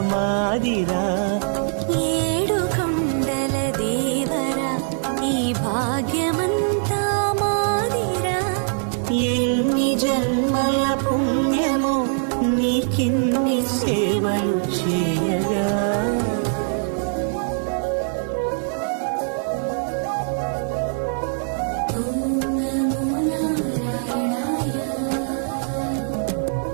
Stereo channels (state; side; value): silent; left; 61 dB below the other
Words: మాదిరా ఏడు కొండల దేవరా ఈ భాగ్యమంతా మాదిరా ఎన్ని జన్మల పుణ్యము నీకిన్ని సేవలు చేయగా